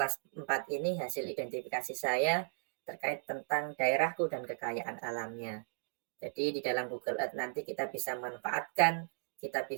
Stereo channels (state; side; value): silent; left; digital silence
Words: 4 ini hasil identifikasi saya terkait tentang daerahku dan kekayaan alamnya. Jadi di dalam Google Earth nanti kita bisa manfaatkan, kita